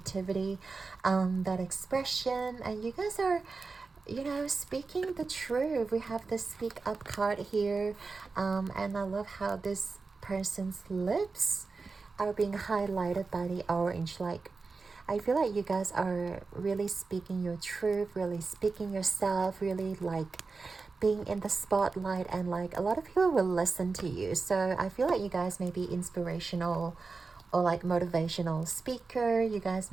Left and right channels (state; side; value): quieter; left; 4.3 dB